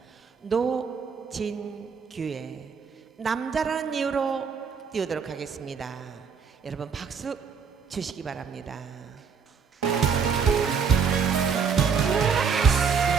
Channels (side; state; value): left; quieter; 6.1 dB